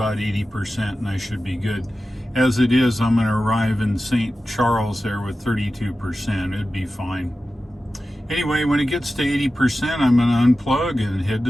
80%, and I should be good. As it is, I'm going to arrive in St. Charles there with 32%. It'd be fine. Anyway, when it gets to 80%, I'm going to unplug and head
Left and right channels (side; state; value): both; normal; correlation 0.94